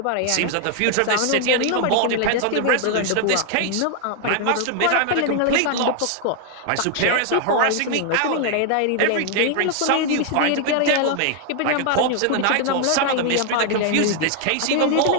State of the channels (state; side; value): different; both; correlation 0.00